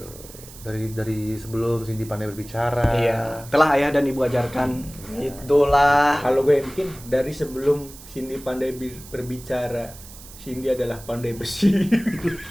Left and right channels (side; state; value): right; noise; hiss, 18 dB below the sound